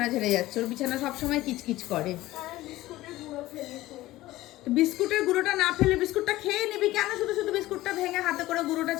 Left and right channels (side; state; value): right; quieter; 16.9 dB